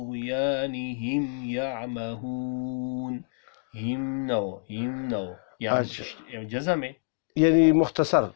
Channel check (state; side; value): silent; right; digital silence